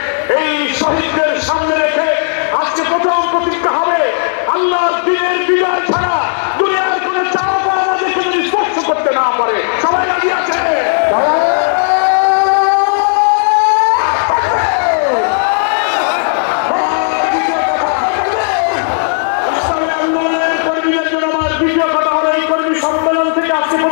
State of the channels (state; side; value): silent; right; digital silence